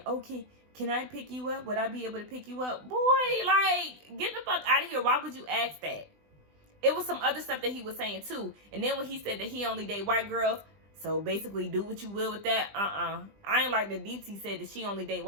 okay, can I pick you up? Would I be able to pick you up? Boy, like, get the fuck out of here. Why would you ask that? It was some other stuff that he was saying, too. And then when he said that he only date white girls, so basically do what you will with that, I ain't like that Deepti said that she only date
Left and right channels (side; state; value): left; late; 20 ms